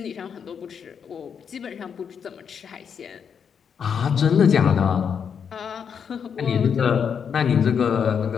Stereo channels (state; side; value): quieter; right; 7.1 dB